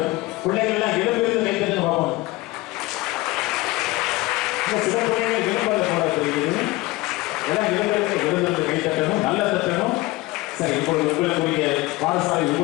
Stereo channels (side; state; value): right; quieter; 20.4 dB